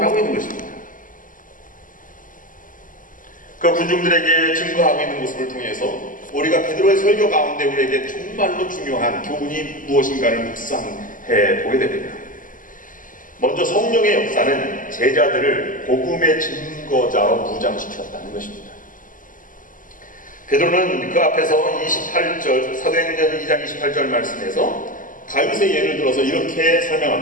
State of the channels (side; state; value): right; late; 0.39 ms